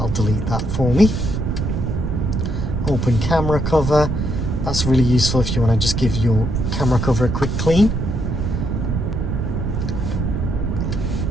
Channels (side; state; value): right; noise; rumble, 1 dB below the sound